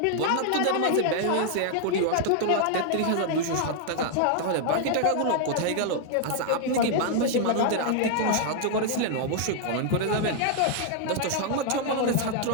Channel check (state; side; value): different; both; correlation 0.00